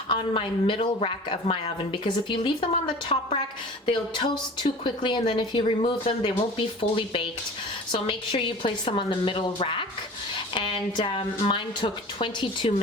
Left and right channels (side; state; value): both; normal; correlation 0.40